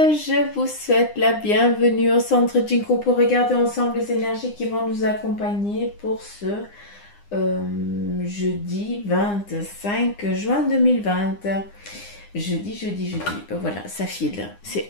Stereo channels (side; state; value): right; late; 9.8 ms